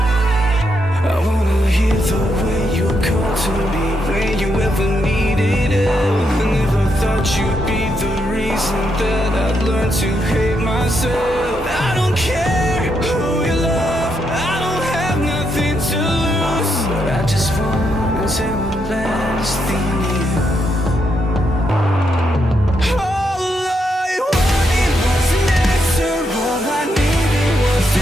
I wanna hear the way you call to me when you ever needed it. I never thought you'd be the reason that I'd learn to hate myself. I don't care who you love, I don't have nothing to lose, but I just wanna say one last thing to you. All I wanted was an answer, all I needed was to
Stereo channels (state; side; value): normal; both; correlation 0.80